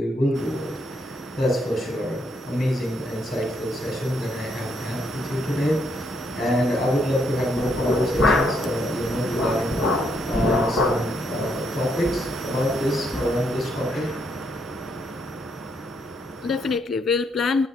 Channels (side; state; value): both; normal; correlation 0.75